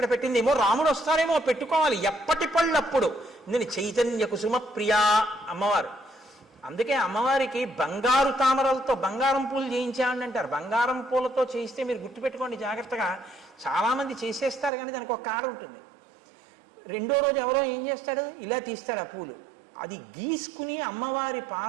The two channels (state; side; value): drops out; left; at 14.7 s